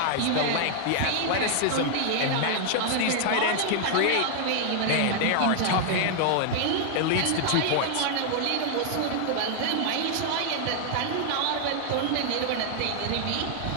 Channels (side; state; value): both; different; correlation 0.00